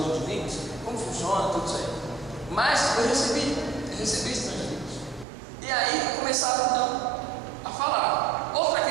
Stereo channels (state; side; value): drops out; left; at 5.2 s